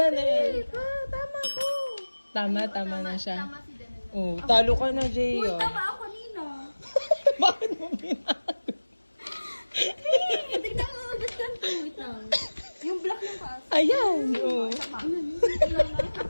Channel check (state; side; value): inverted; both; correlation -1.00